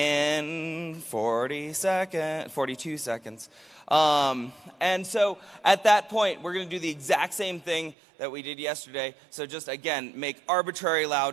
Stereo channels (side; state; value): left; drops out; at 8.0 s